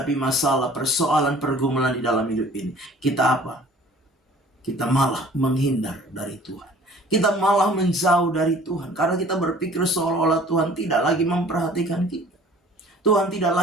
masalah, persoalan, pergumulan di dalam hidup ini, kita apa? Kita malah menghindar dari Tuhan. Kita malah menjauh dari Tuhan karena kita berpikir seolah-olah Tuhan tidak lagi memperhatikan kita. Tuhan tidak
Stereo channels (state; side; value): normal; both; correlation 0.50